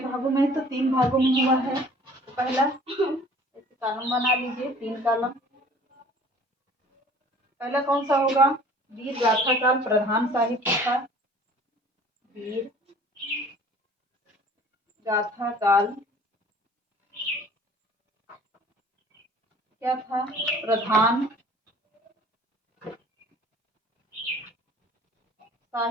में है? तो 3 भागों में हुआ है। तो पहला ऐसे कॉलम बना लीजिए, 3 कॉलम। पहला कौन सा होगा? वीर गाथा काल प्रधान साहित्य था। वीर गाथा काल क्या था? प्रधान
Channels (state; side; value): normal; both; correlation 0.50